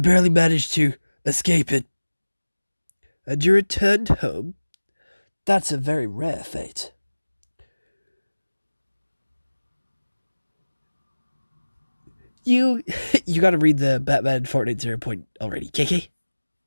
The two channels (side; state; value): both; inverted; correlation -1.00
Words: managed to escape it. And you returned home? That's a very rare fate. You you gotta read the Batman Fortnite 0 point already, KK.